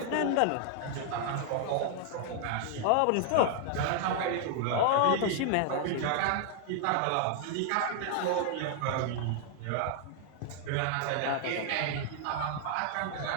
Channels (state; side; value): different; both; correlation 0.00